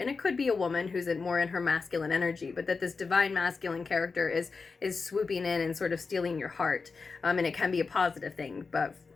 it could be a woman who's more in her masculine energy, but that this divine masculine character is swooping in and sort of stealing your heart. And it can be a positive thing, but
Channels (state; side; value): quieter; right; 4.6 dB